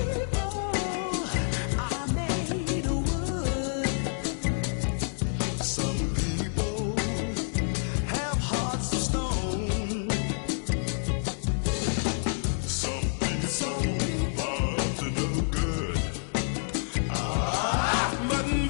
are made of wood. Some people have hearts of stone. Some people are up to no good. But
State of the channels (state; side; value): silent; right; digital silence